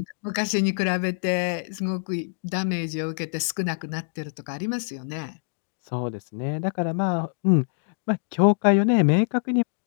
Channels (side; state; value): right; silent; digital silence